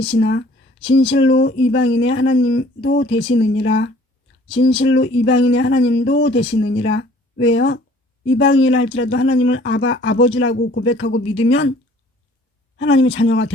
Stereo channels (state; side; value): normal; both; correlation 0.54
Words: 진실로 이방인의 하나님도 되시느니라. 진실로 이방인의 하나님도 되시느니라. 왜요? 이방인이라 할지라도 하나님을 아버지라고 고백하고 믿으면 하나님의 자녀가